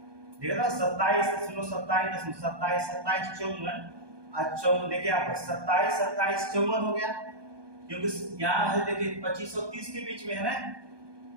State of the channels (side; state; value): left; late; 1.2 ms